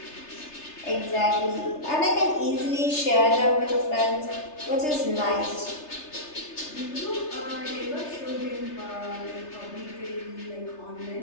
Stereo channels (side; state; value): right; late; 3.3 ms